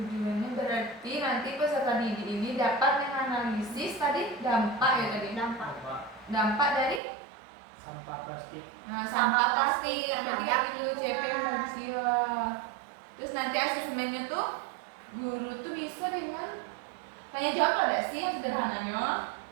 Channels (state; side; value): drops out; left; at 7.0 s